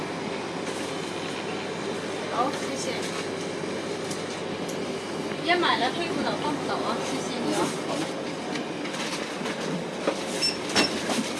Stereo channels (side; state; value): both; identical; correlation 1.00